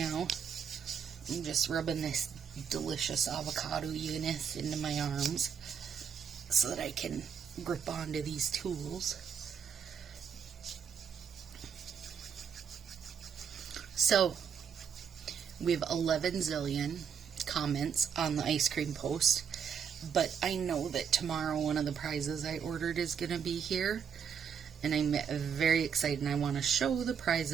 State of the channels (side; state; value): left; quieter; 7.4 dB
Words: I'm just rubbing this delicious avocado goodness into my arms so that I can grip onto these tools. So we have 11 zillion comments on the ice cream post, but I know that tomorrow one of the prizes I ordered is going to be here, and I'm very excited, and I want to show the